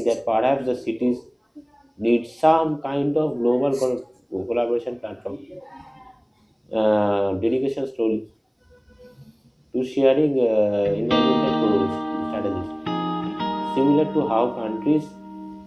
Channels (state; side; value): identical; both; correlation 1.00